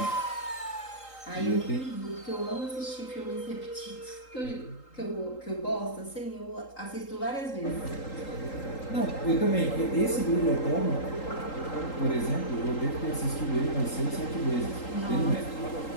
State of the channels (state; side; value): late; right; 3.8 ms